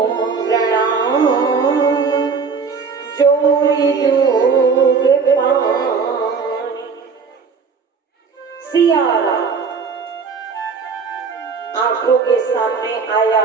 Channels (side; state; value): left; quieter; 5.3 dB